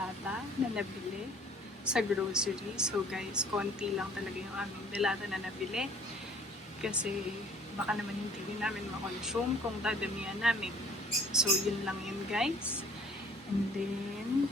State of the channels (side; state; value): both; normal; correlation 0.55